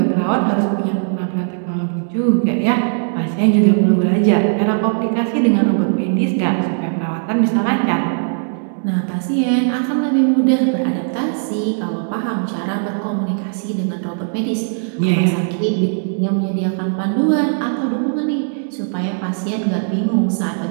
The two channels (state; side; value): silent; left; 67 dB below the other